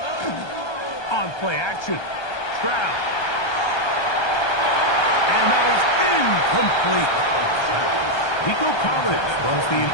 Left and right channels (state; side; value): late; right; 1.3 ms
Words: On play action. Stroud. And that is incomplete. Nico Collins was the